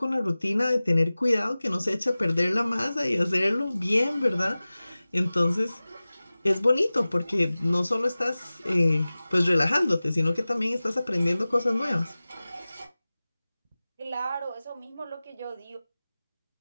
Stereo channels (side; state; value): both; inverted; correlation -0.98